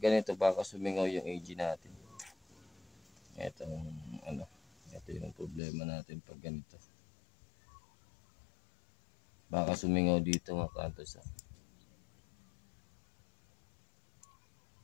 ganito baka sumingaw yung AG natin. Ito yung problema natin pag ganito. Baka sumingaw dito mga hunters.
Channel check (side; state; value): right; drops out; at 5.6 s